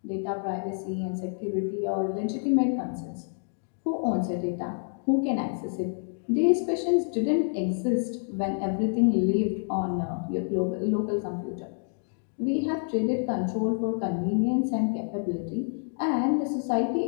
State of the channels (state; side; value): silent; right; 59 dB below the other